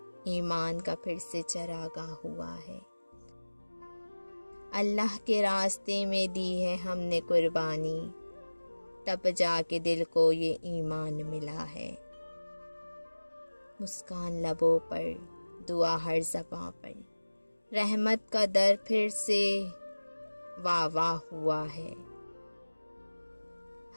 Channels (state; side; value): inverted; both; correlation -1.00